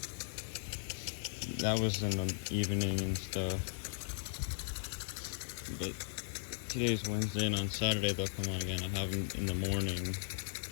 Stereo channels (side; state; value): right; silent; digital silence